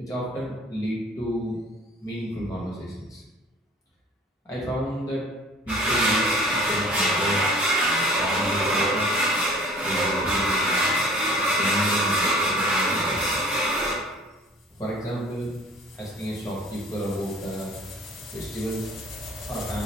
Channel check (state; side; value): normal; both; correlation 0.49